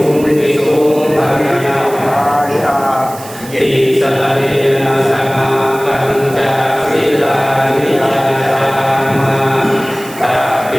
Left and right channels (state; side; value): noise; right; hiss, 17 dB below the sound